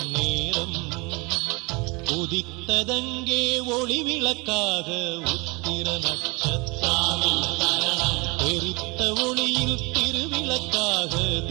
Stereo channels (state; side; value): quieter; left; 27.4 dB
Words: நேரம் உதித்ததங்கே ஒளி விளக்காக உத்திர நட்சத்திரம், தெரித்த ஒளியில் திருவிளக்காக